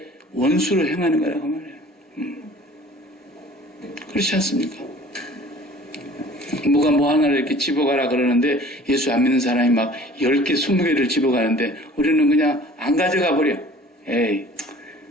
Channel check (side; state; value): both; normal; correlation 0.48